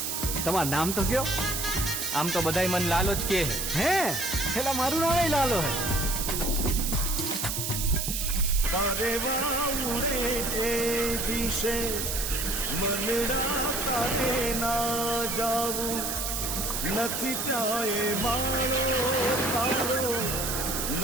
તમારું નામ તો કયો? આમ તો બધાય મન લાલો જ કે હે હેલા મારું નામ લાલો હે. તારે વાઉરે એ દિશે મનડા તારે ના જાવું. નથી ત્યાં એ માળો તારો,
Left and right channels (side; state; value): right; noise; hiss, 2 dB below the sound